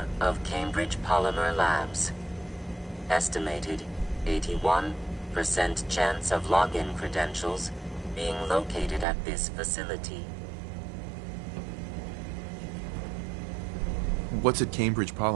of Cambr6idge Polymer Labs. Estimated 81% chance of login credentials being located at this facility. What's at Cambr6idge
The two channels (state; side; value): drops out; left; at 9.1 s